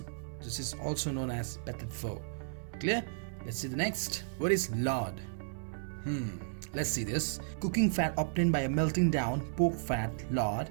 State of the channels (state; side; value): silent; left; digital silence